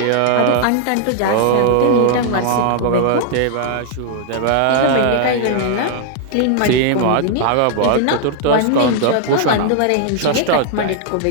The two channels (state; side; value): different; both; correlation 0.00